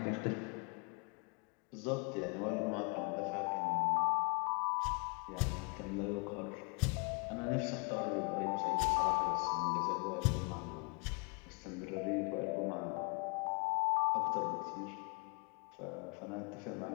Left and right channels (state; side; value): quieter; right; 33.5 dB